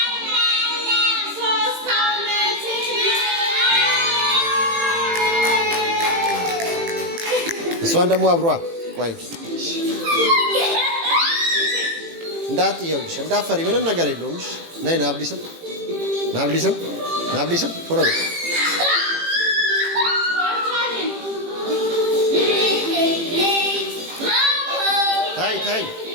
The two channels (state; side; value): late; left; 18 ms